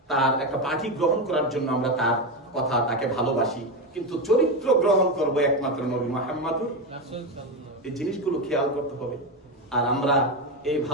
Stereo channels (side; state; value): both; normal; correlation 0.13